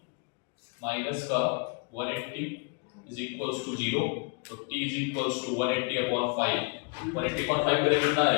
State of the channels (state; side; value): quieter; right; 34.2 dB